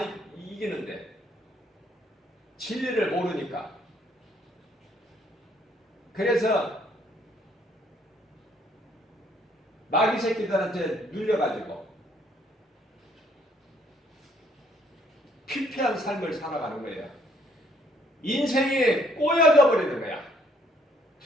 이기는데 진리를 모르니까. 그래서 마귀 새끼들한테 눌려가지고 피폐한 삶을 살아가는 거예요. 인생이 꼬여져 버리는 거야.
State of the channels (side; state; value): both; normal; correlation 0.66